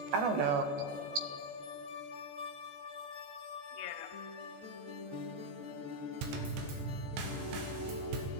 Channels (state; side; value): late; left; 14 ms